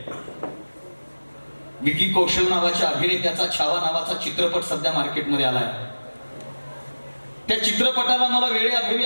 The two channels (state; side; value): inverted; both; correlation -1.00